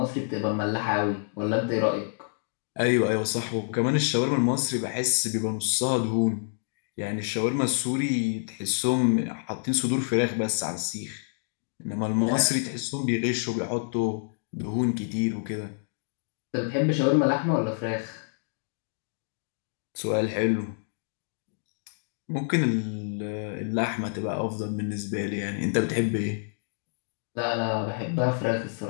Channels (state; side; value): silent; right; digital silence